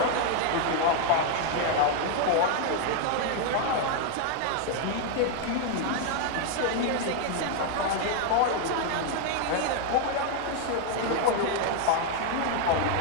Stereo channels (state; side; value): different; both; correlation 0.00